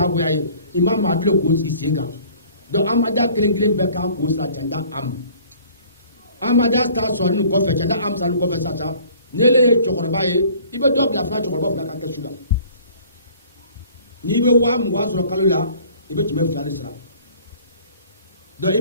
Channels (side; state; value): both; inverted; correlation -0.52